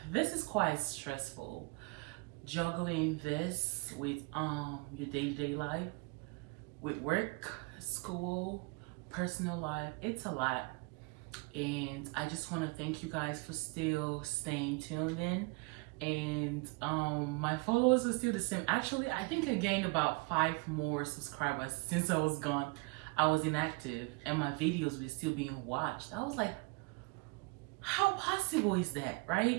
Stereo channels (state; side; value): quieter; left; 28.3 dB